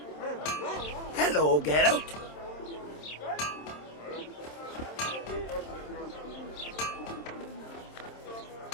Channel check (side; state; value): right; late; 27 ms